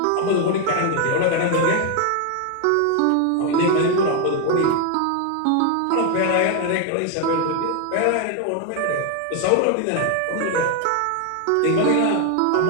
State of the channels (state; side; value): different; both; correlation 0.00